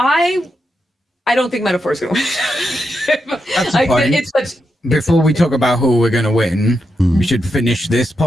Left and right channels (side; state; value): both; normal; correlation 0.85